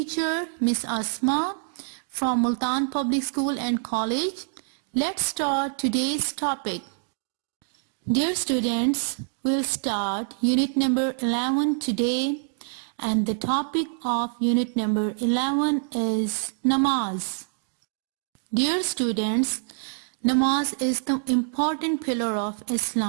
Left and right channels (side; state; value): left; silent; digital silence